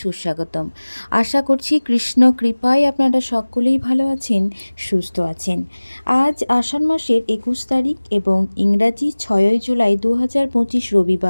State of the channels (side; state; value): both; inverted; correlation -1.00